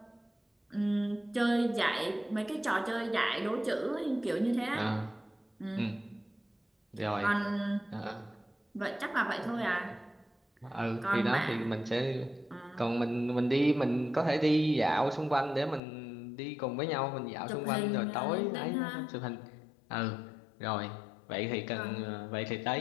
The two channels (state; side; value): drops out; right; at 15.8 s